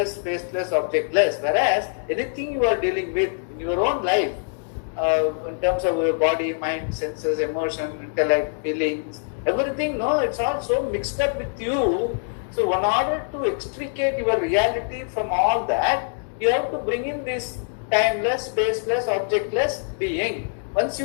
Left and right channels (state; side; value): silent; right; digital silence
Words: spaceless, objectless. Whereas anything you are dealing with in your own life, in terms of your body, mind, senses, emotion, intellect, feelings, everything, no, it's all so mixed up with you. So in order to extricate your reality from all that, you have to bring in this timeless, spaceless, objectless being. Once